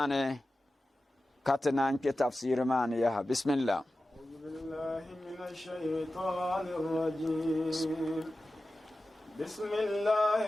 Ka te nan ke tafsir mane ya. Bismillah. بالله من الشيطان الرجيم بسم الله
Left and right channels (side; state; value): both; normal; correlation 0.94